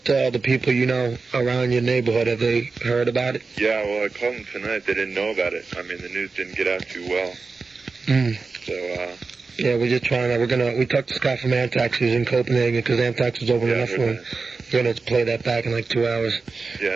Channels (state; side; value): quieter; left; 4.3 dB